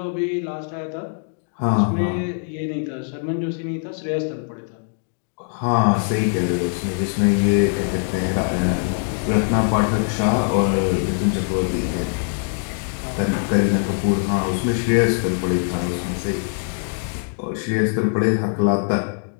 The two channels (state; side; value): silent; right; 60 dB below the other